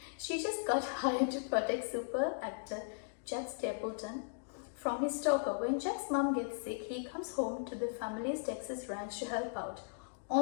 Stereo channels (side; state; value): right; silent; digital silence